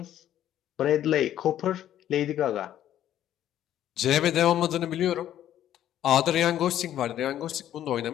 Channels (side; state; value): right; quieter; 11.7 dB